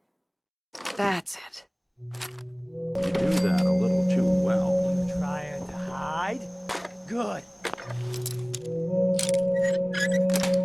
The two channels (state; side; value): identical; both; correlation 1.00